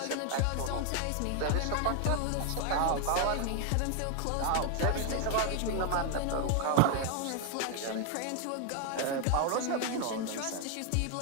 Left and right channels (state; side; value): different; both; correlation 0.01